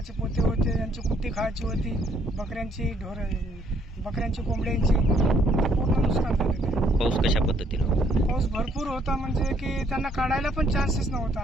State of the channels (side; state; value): both; normal; correlation 0.67